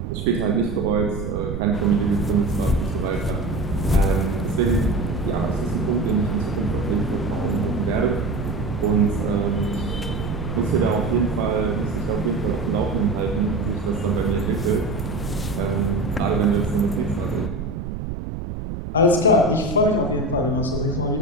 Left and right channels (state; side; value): noise; right; rumble, 6 dB below the sound